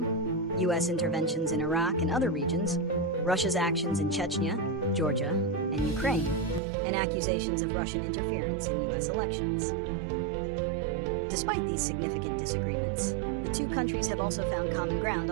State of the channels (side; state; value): left; drops out; at 6.6 s